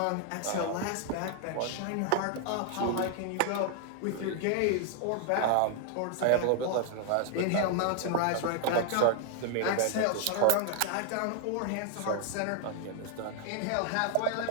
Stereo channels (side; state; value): both; different; correlation 0.00